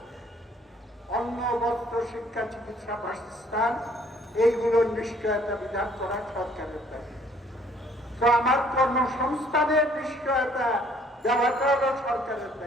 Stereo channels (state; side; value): normal; both; correlation 0.60